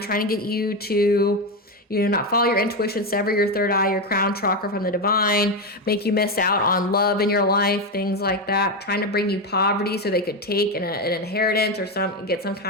to get you to, you know, not follow your intuition, sever your third eye, your crown chakra from the divine, make you miss out on love in your life, things like that, trying to bring you poverty so they could take an inheritance or get some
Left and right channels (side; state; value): both; normal; correlation 0.12